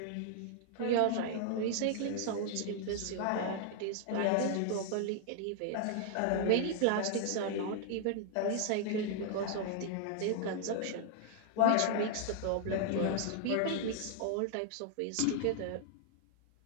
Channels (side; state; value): both; different; correlation -0.01